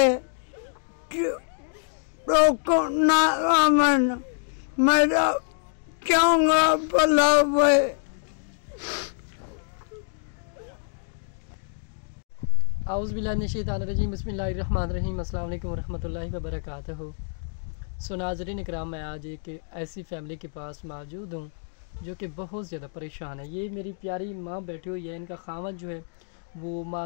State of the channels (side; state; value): right; silent; digital silence